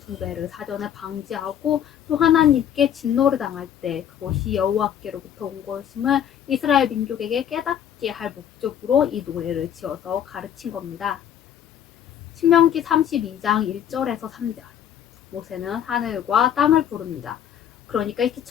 사전에 방지하고 또 하나님께 진노를 당할 때 그것이 여호와께로부터 온 것임을 이스라엘 민족에게 깨닫게 할 목적으로 이 노래를 지어서 가르친 겁니다. 신명기 32장 1절에서 3절 모세는 하늘과 땅을 부릅니다. 그러니까 이렇게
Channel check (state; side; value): quieter; right; 9.7 dB